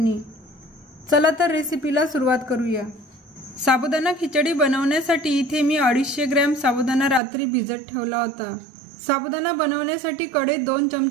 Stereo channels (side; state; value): left; drops out; at 7.2 s